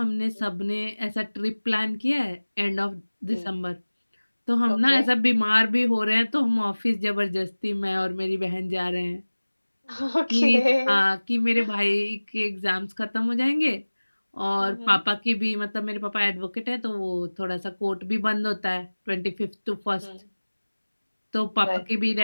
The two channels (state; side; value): inverted; both; correlation -1.00